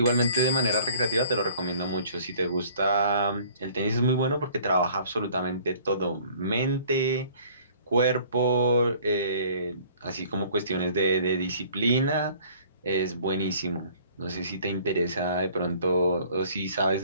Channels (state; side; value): inverted; both; correlation -0.53